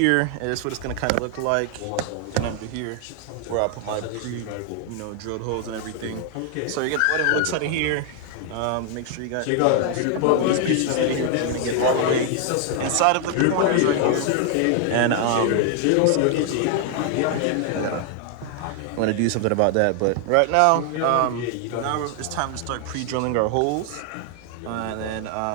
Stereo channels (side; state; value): both; different; correlation 0.00